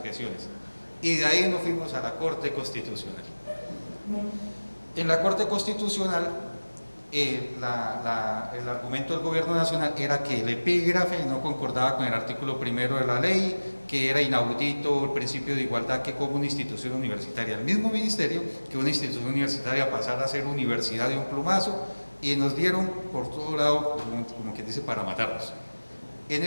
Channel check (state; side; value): inverted; both; correlation -1.00